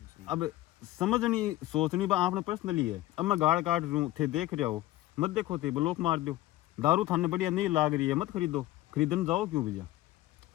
अब समझनी सोचनी बा आपने पर्सनली है। अब मैं गाड़ काट रूँ थे देख रहा हो मत देखो थे ब्लॉक मार दो दारू थाने बढ़िया नहीं लाग रही है मत खरीदो खरीदने जाओ क्यों भैया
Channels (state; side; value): quieter; right; 16.1 dB